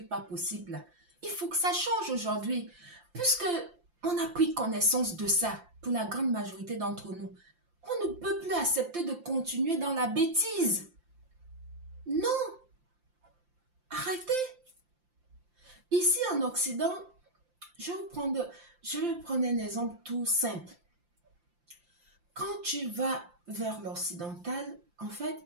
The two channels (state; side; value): late; left; 5.8 ms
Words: pas possibles. Il faut que ça change aujourd'hui, puisque on a pris connaissance de ça pour la grande majorité d'entre nous. On ne peut plus accepter de continuer dans la bêtise. Non. Arrêtez. Ici en Occident, je vais prendre un exemple tout simple. Quand tu vas vers l'occidental, en fait,